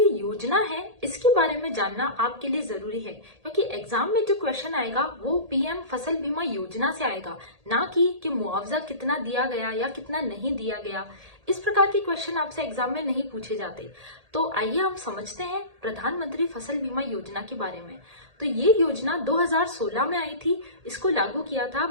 योजना है, इसके बारे में जानना आपके लिए जरूरी है, क्योंकि एग्जाम में जो क्वेश्चन आएगा वो PM फसल बीमा योजना से आएगा, ना कि मुआवजा कितना दिया गया या कितना नहीं दिया गया। इस प्रकार के क्वेश्चन आपसे एग्जाम में नहीं पूछे जाते। तो आइए हम समझते हैं प्रधानमंत्री फसल बीमा योजना के बारे में। तो ये योजना 2016 में आई थी। इसको लागू किया था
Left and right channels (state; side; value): late; left; 1.8 ms